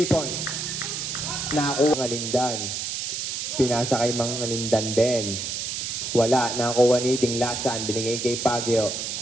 points. Nakakuha Mangalindan. Pinasa kay Mangalindan din. Wala. Nakakuha ni Diglasan. Binigay kay Pagyo.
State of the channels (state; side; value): noise; right; hiss, 3 dB below the sound